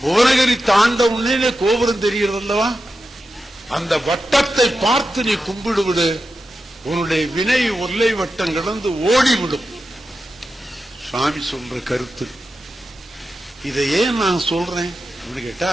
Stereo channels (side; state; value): both; normal; correlation 0.91